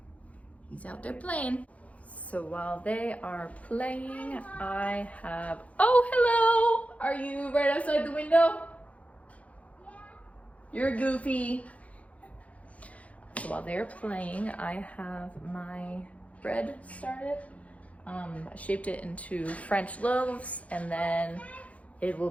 He's out there playing. So while they are playing, I have... Oh, hello! Are you right outside the window? Yeah. You're goofy. So while they're playing, I have my bread started. I shaped it into French loaves, and then it will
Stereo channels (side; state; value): right; late; 0.066 ms